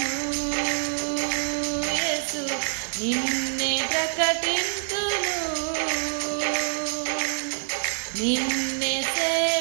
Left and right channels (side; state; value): left; silent; digital silence